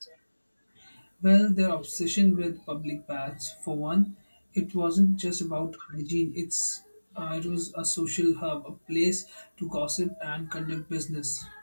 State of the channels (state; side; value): inverted; both; correlation -1.00